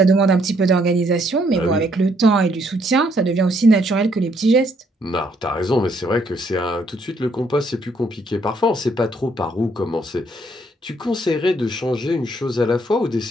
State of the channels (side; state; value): both; normal; correlation 0.70